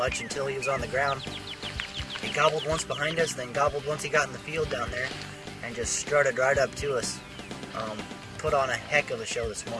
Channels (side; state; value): both; identical; correlation 1.00